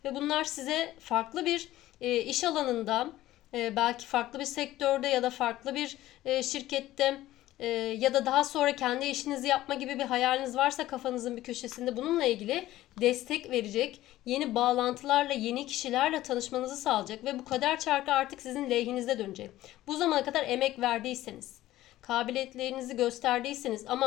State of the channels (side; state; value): right; quieter; 15.3 dB